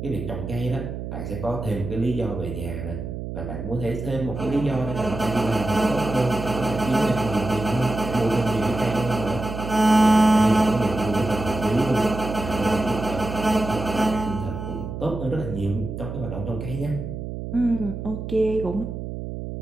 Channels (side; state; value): right; noise; hum, 7 dB below the sound